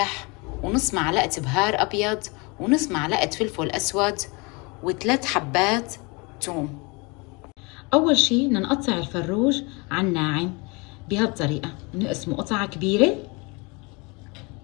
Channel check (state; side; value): quieter; right; 28.4 dB